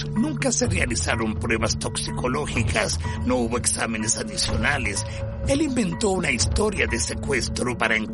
Nunca se realizaron pruebas toxicológicas, no hubo exámenes adicionales. Él inventó una historia de secuestro para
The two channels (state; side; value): identical; both; correlation 1.00